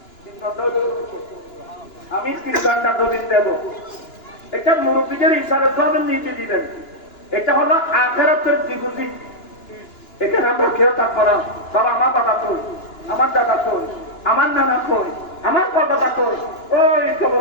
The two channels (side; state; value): right; late; 2.9 ms